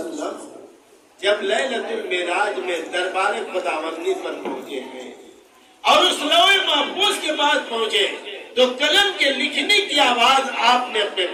जब लैलतुल मेराज में दरबार खुदावंदी पर पहुंचे हैं और उस लौहे महफूज के पास पहुंचे तो कलम के लिखने की आवाज आपने अपने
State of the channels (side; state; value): both; identical; correlation 1.00